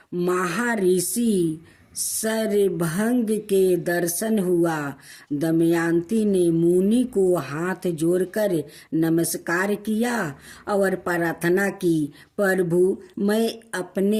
महर्षि शरभंग के दर्शन हुआ। दमयंती ने मुनि को हाथ जोड़कर नमस्कार किया और प्रार्थना की, प्रभु, मैं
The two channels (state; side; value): identical; both; correlation 1.00